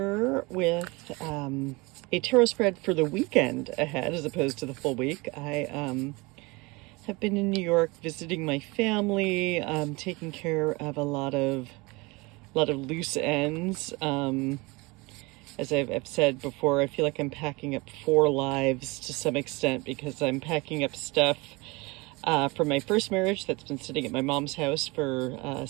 with a tarot spread for the weekend ahead as opposed to the full week. I have been in New York visiting my family, taking care of a lot of loose ends. As I've said before, I feel like I'm packing up four lives to some extent because I'm packing up stuff from my first marriage that's been sitting at my mom's house for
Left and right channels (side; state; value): left; quieter; 25.2 dB